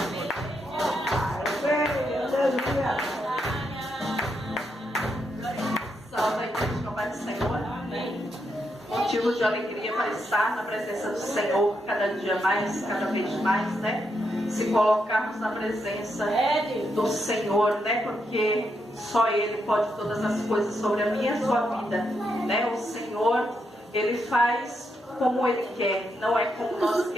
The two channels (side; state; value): both; normal; correlation 0.81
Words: Aleluia. Salve a igreja com a paz do Senhor. Amém. Motivo de alegria para estar na presença do Senhor cada dia mais, cada vez mais, né? Se colocarmos na presença do Senhor, né? Porque só Ele pode todas as coisas sobre a minha e a sua vida, né? O Senhor, Ele faz como Ele quer, não é como nós